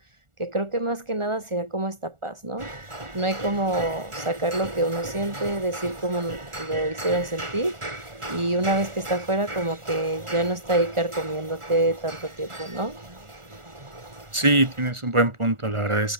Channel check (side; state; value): left; late; 1.4 ms